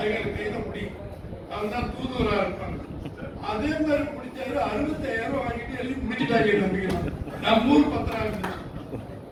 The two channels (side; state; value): both; identical; correlation 1.00